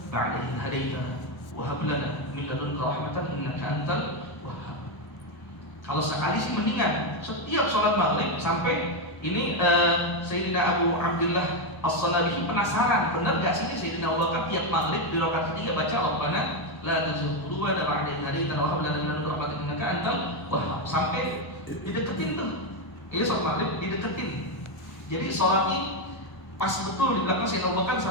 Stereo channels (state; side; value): late; right; 1.0 ms